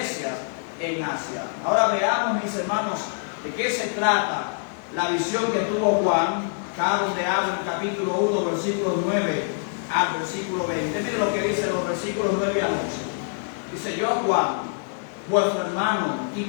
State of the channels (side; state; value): right; silent; 62 dB below the other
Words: en Asia. Ahora veamos, mis hermanos, de qué se trata la visión que tuvo Juan, acá donde habla en el capítulo 1, versículos 9 al versículo 20. Miren lo que dicen los versículos 9 al 11. Dice: yo, Juan, vuestro hermano y